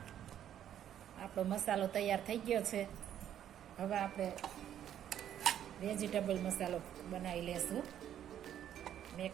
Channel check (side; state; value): left; quieter; 10.5 dB